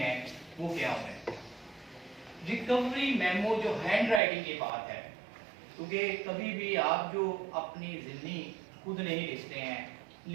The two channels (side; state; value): left; drops out; at 4.2 s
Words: वो क्या हुए हैं। रिकवरी मेमो जो हैंड राइटिंग की बात है, क्योंकि कभी भी आप जो अपनी जिंदगी खुद नहीं लिखते हैं,